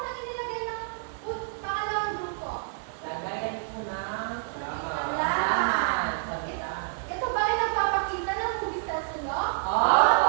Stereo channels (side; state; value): left; silent; 57 dB below the other